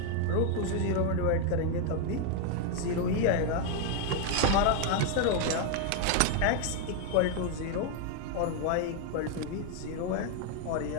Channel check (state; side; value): different; both; correlation 0.01